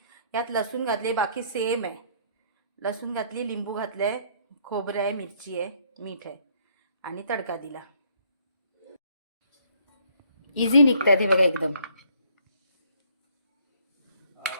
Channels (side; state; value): both; inverted; correlation -0.64